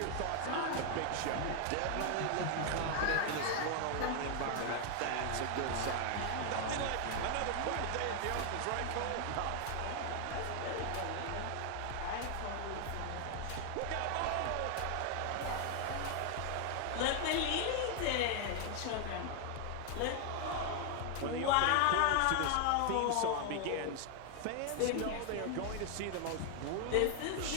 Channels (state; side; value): different; both; correlation 0.00